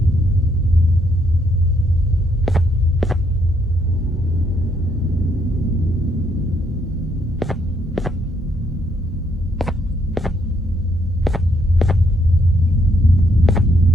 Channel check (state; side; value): normal; both; correlation 0.72